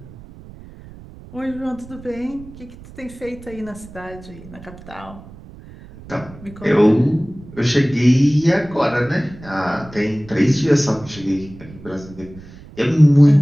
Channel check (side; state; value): right; noise; rumble, 18 dB below the sound